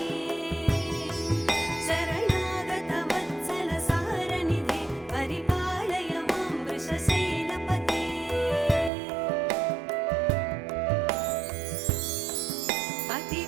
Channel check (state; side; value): drops out; left; at 8.9 s